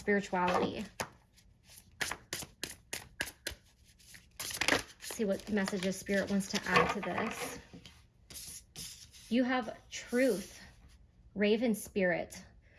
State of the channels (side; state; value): both; identical; correlation 1.00